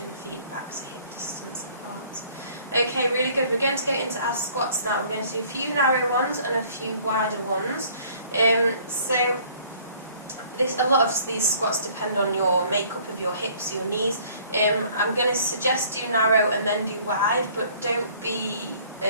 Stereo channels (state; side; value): inverted; both; correlation -0.56